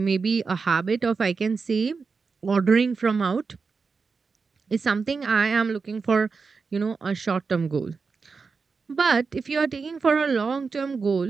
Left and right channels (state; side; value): quieter; left; 4.9 dB